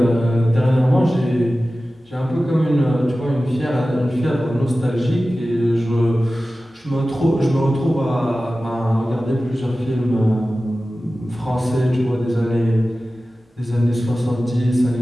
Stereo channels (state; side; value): normal; both; correlation 0.95